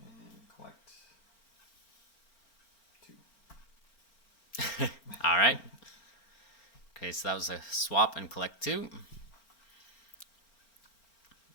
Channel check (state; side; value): late; right; 4.4 ms